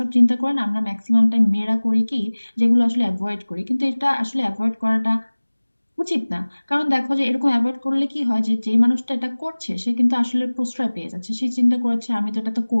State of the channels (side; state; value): both; inverted; correlation -1.00